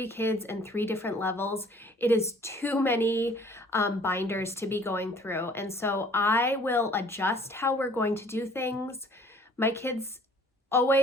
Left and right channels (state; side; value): normal; both; correlation 0.54